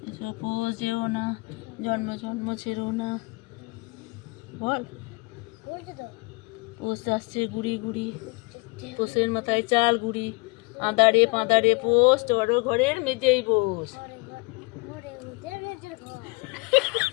এসো পোষ যেও না, জন্ম জন্ম ছেড়ো না, বল। পোষ আসছে গুড়ি গুড়ি, পোষের মাথায় চাল গুড়ি আদারে পাঁদারে পোষ বড় ঘরের মেজেই বস।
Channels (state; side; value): quieter; right; 27.7 dB